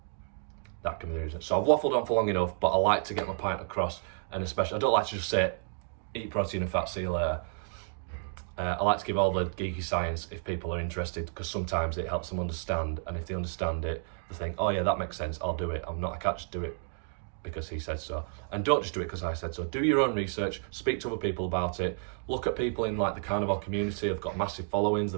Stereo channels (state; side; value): silent; left; 57 dB below the other